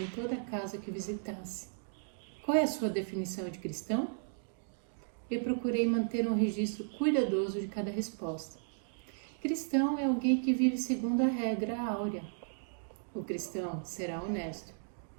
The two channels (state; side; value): silent; left; digital silence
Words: em toda casa que visitasse. Qual é a sua definição de cristão? Eu procurei manter um registro cuidadoso de cada resposta. Cristão é alguém que vive segundo a regra áurea. O cristão será honesto.